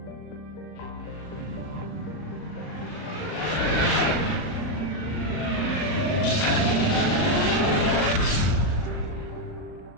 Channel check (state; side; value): late; right; 39 ms